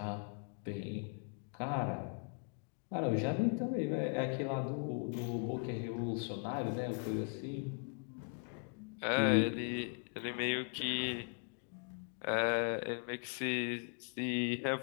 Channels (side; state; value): right; quieter; 39.5 dB